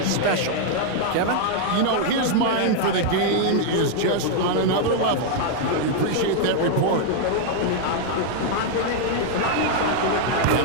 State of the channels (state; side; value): different; both; correlation 0.00